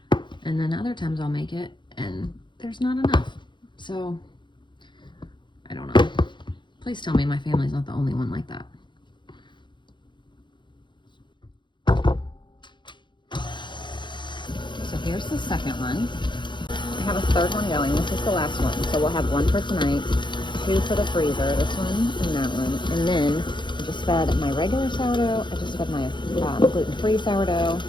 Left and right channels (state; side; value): late; right; 0.23 ms